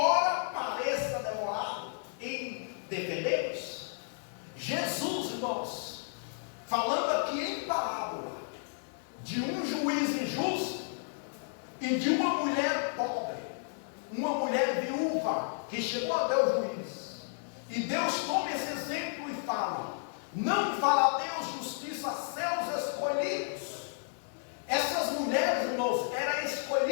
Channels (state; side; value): silent; right; 56 dB below the other